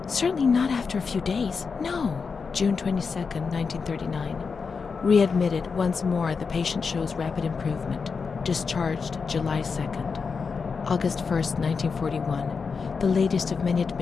Certainly not after a few days. No. June 22nd, 1939. Readmitted once more. The patient shows rapid improvement. Discharged July 2nd. August 1st, 1941, the latest of many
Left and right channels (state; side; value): quieter; right; 5.3 dB